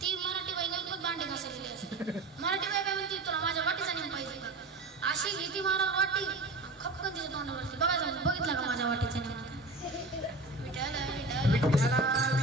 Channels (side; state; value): left; quieter; 3.0 dB